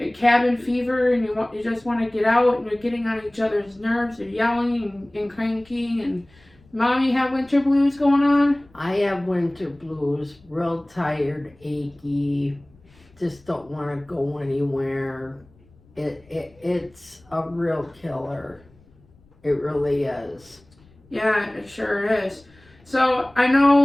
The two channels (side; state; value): left; noise; rumble, 29 dB below the sound